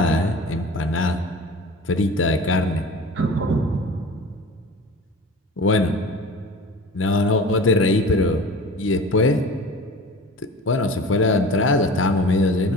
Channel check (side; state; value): both; normal; correlation 0.38